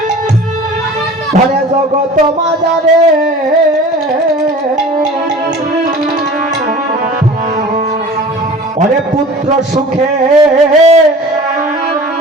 ধরে জগৎ মাঝারে অরে পুত্র সুখে,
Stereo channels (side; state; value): both; normal; correlation 0.42